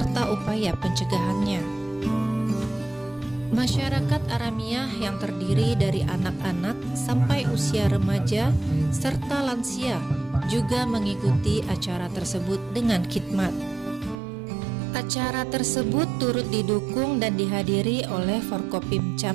upaya pencegahannya. Masyarakat Aramiah yang terdiri dari anak-anak sampai usia remaja serta lansia juga mengikuti acara tersebut dengan khidmat. Acara tersebut turut didukung dan dihadiri oleh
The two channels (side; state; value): left; drops out; at 14.2 s